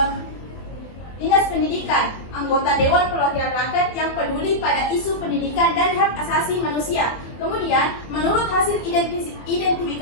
Dinas Pendidikan, anggota Dewan Perwakilan Rakyat yang peduli pada isu pendidikan dan hak asasi manusia. Kemudian, menurut hasil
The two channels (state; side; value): late; right; 24 ms